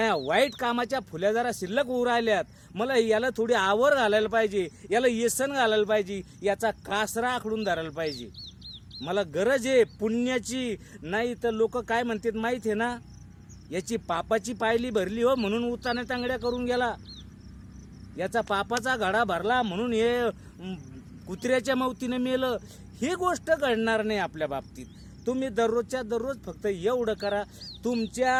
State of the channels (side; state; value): both; identical; correlation 1.00